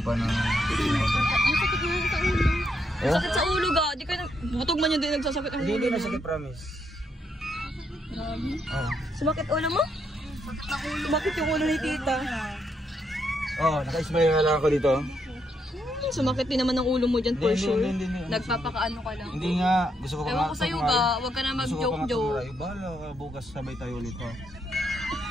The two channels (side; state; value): both; normal; correlation 0.77